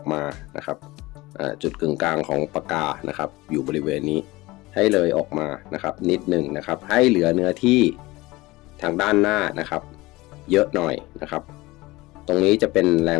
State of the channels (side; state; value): right; quieter; 20.7 dB